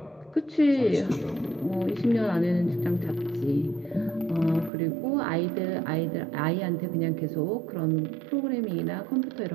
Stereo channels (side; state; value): left; drops out; at 4.7 s